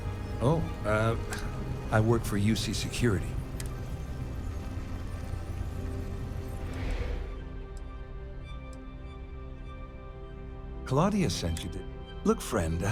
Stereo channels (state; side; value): identical; both; correlation 1.00